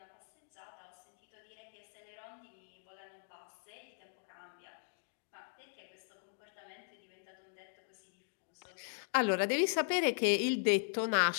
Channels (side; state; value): right; silent; digital silence